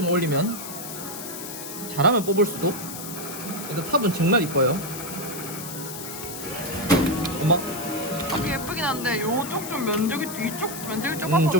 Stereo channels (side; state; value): left; noise; hiss, 9 dB below the sound